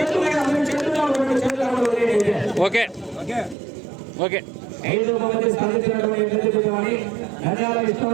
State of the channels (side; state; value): left; drops out; at 3.6 s